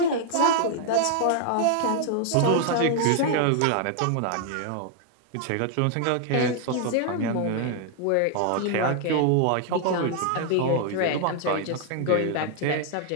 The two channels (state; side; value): different; both; correlation 0.00